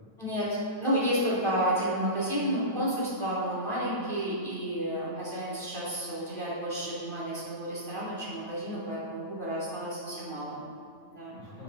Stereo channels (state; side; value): late; right; 9.0 ms